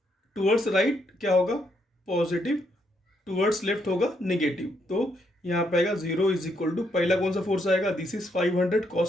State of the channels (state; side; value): normal; both; correlation 0.75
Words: टूवर्ड्स राइट क्या होगा? पॉजिटिव, टूवर्ड्स लेफ्ट होगा नेगेटिव। तो यहाँ पे आएगा 0 इज इक्वल टू, पहला कौन सा फोर्स आएगा? दिस इज 500